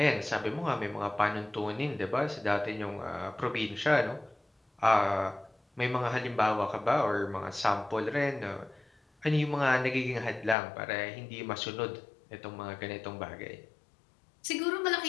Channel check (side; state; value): right; drops out; at 10.6 s